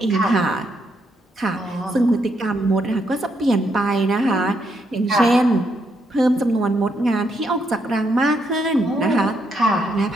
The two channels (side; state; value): both; normal; correlation 0.77